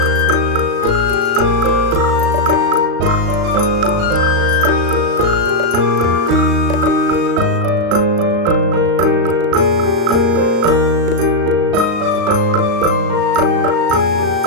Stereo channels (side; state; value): left; late; 36 ms